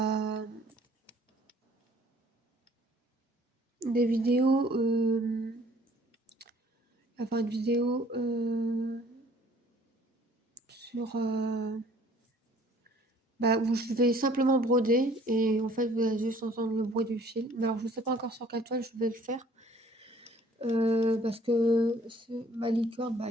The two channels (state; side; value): normal; both; correlation 0.56